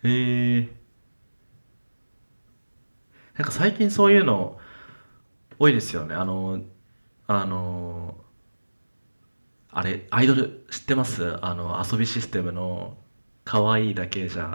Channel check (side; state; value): both; inverted; correlation -1.00